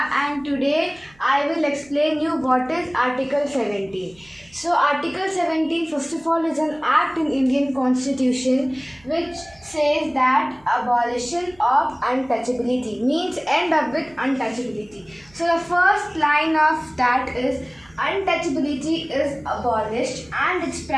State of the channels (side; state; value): right; noise; hum, 29 dB below the sound